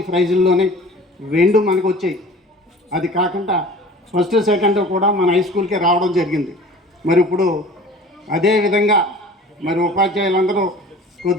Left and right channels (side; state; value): both; normal; correlation 0.43